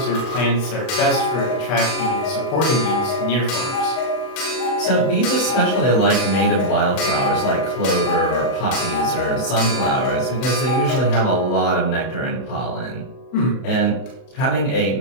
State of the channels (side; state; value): right; late; 32 ms